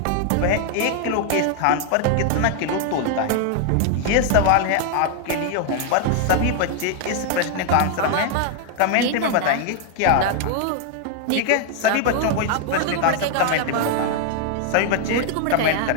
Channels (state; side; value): different; both; correlation 0.00